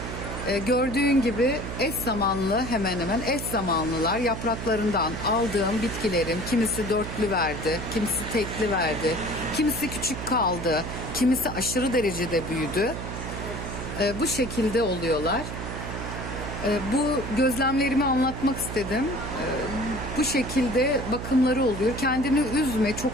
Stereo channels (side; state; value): right; noise; hum, 7 dB below the sound